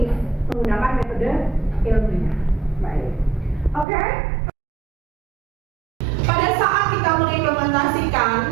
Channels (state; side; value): drops out; left; at 3.9 s